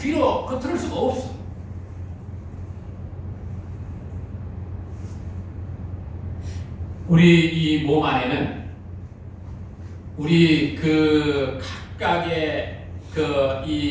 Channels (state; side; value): identical; both; correlation 1.00